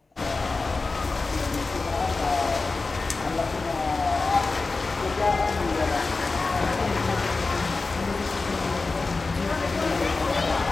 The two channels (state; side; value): quieter; right; 3.8 dB